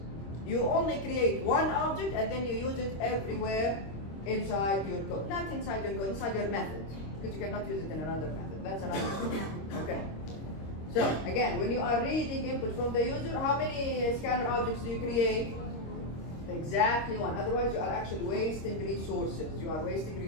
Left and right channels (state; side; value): late; right; 26 ms